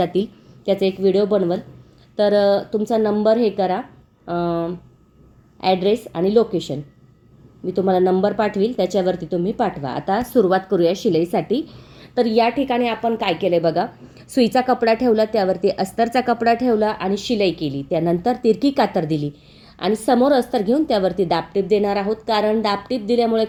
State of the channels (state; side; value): identical; both; correlation 1.00